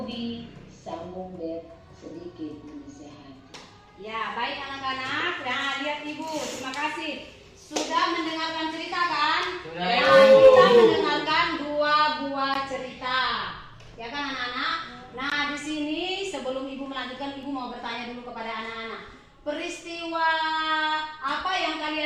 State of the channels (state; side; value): identical; both; correlation 1.00